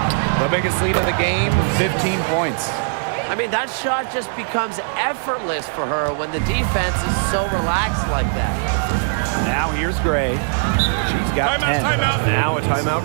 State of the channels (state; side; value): silent; left; 66 dB below the other